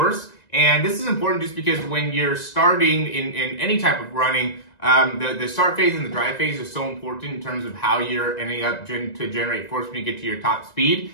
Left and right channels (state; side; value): late; right; 1.9 ms